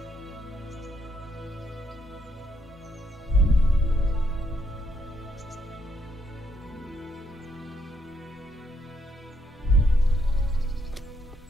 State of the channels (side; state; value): both; normal; correlation 0.75